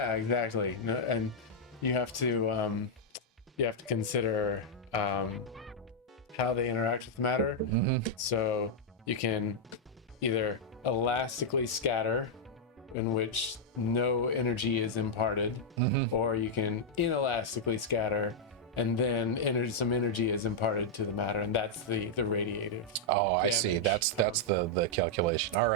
exactly. No, and you have to consider how they interact with matter. Mm-hmm. So you can either elastically scatter, in which no energy is imparted, Mm-hmm. or you can inelastically scatter, and then some energy is imparted to the matter, and that's the radiative. oh, I see. damage. That's the calculation. All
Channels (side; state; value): both; normal; correlation -0.05